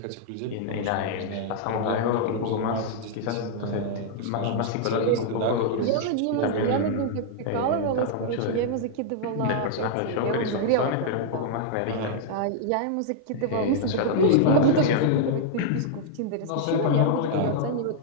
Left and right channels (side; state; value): both; different; correlation -0.01